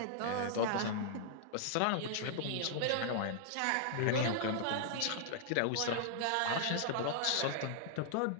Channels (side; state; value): both; different; correlation -0.01